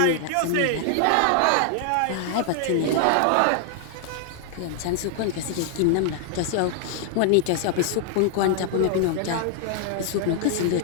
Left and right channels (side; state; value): both; different; correlation 0.00